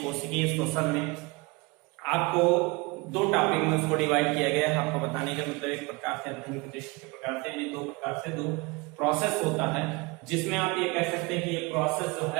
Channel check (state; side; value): quieter; left; 25.9 dB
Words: श्वसन में आपको दो टॉपिक में उसको डिवाइड किया गया है। आपको बताने का मतलब एक प्रकार से अध्ययन के दृष्टि के प्रकार से यानी दो प्रकार से दो प्रोसेस होता है, जिसमें आप ये कह सकते हैं कि ये प्रोसेस जो